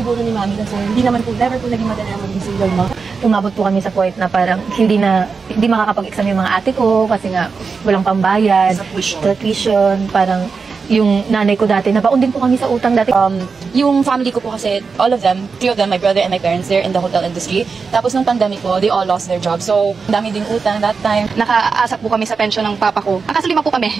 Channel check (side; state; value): left; quieter; 5.0 dB